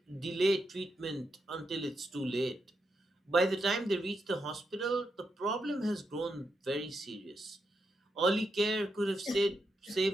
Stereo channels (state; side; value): normal; both; correlation 0.84